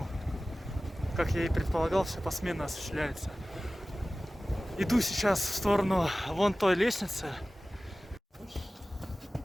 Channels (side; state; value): both; normal; correlation 0.97